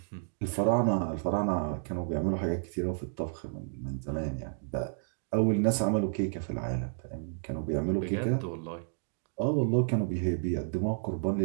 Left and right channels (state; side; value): silent; left; digital silence